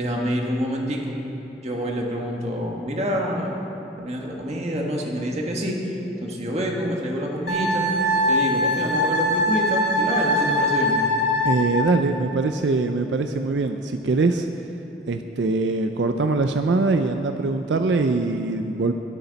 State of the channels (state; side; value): normal; both; correlation 0.32